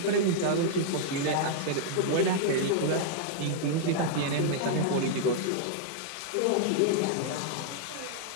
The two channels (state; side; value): different; both; correlation -0.01